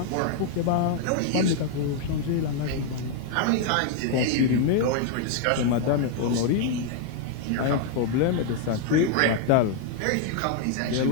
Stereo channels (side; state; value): both; different; correlation 0.00